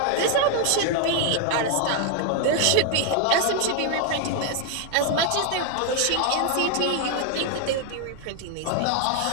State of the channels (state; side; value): different; both; correlation 0.00